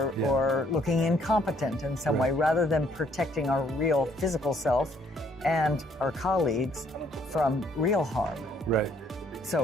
looking incompetent in some way, rather than protecting our real physical self and our colleagues from real harm. Right.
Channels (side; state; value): both; normal; correlation 0.66